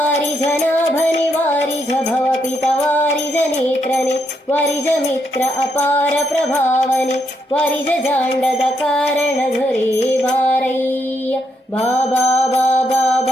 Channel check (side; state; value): both; normal; correlation 0.78